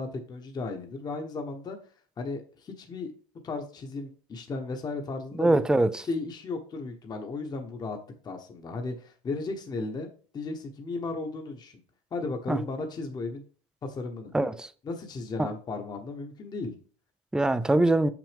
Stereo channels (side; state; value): both; normal; correlation 0.83